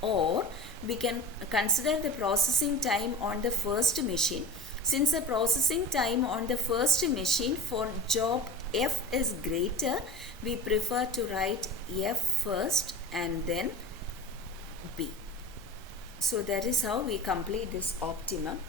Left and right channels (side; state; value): both; normal; correlation 0.35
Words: or we can consider the processing time on the first machine. Since the processing time on the first machine for job F is greater, we prefer to write F first and then B. So that is how we complete this optimum